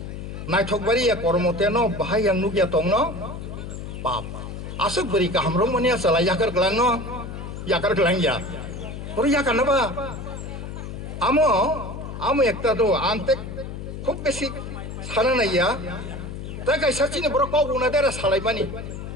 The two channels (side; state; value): left; noise; hum, 8 dB below the sound